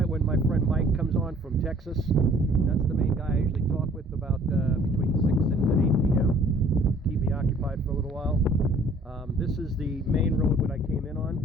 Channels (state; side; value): normal; both; correlation 0.56